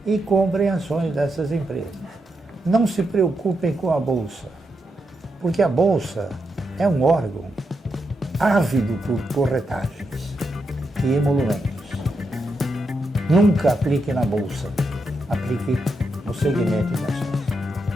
E comprem ações dessas empresas. Não se preocupem com a Bolsa, porque a Bolsa é um órgão ávido por corretagens e emolumentos. Nunca aplique na Bolsa, aplique no segmento de ações.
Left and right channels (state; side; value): normal; both; correlation 0.84